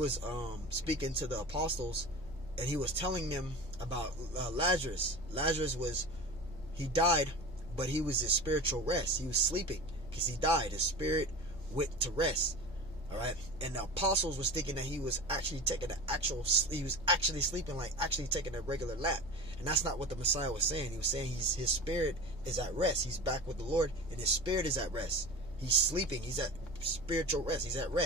speaking to the apostles, and he was telling them about Lazarus. Lazarus he died, but he was in spiritual rest. He was sleeping because he died. His spirit went to rest. All right, and the apostles was thinking that he was actually taking he was actually sleeping, like actually taking a regular nap, and that's not what the Messiah was saying. He was saying his spirit is at rest. He's back with the Lord, and his spirit is at rest. He's sleeping. He's at spiritual rest. He's at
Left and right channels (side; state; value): left; noise; hum, 16 dB below the sound